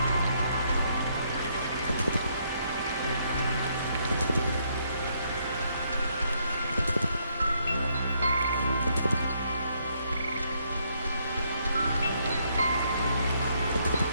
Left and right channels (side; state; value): both; inverted; correlation -0.72